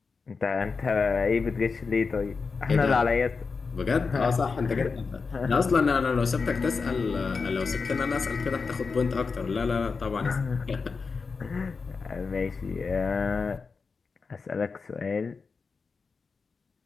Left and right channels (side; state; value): right; quieter; 4.8 dB